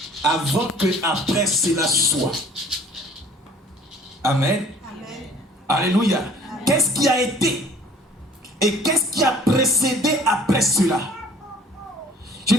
avant que après cela soit? Amen. Amen. Alléluia. Amen. Qu'est-ce qui a été et qu'est-ce qui a précédé après cela? Je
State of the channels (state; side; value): normal; both; correlation 0.52